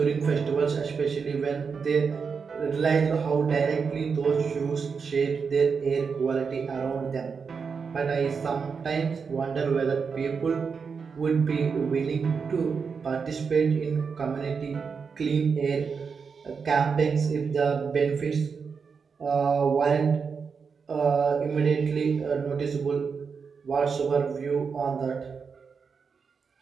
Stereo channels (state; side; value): quieter; left; 5.7 dB